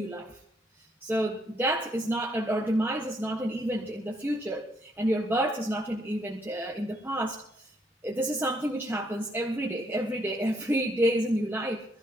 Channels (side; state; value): both; normal; correlation 0.72